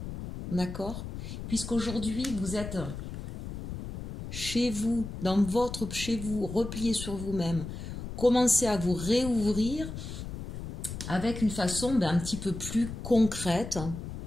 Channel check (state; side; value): noise; left; rumble, 8 dB below the sound